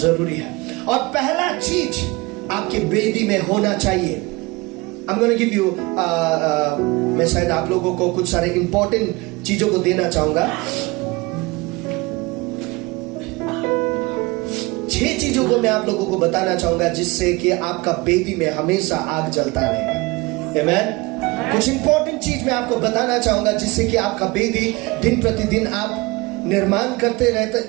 है। और पहला चीज आपके बेदी में होना चाहिए, I'm going to give you मैं शायद आप लोगों को कुछ सारे इंपॉर्टेंट चीजों को देना चाहूंगा। 6 चीजों को मैं आप लोगों को बताना चाहूंगा जिससे कि आपका बेदी में हमेशा आग जलता रहेगा। आमेन। कुछ इंपॉर्टेंट चीज मैं आपको बताना चाहूंगा जिससे कि आपका बेदी दिन प्रतिदिन आप निर्माण करते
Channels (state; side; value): quieter; left; 23.8 dB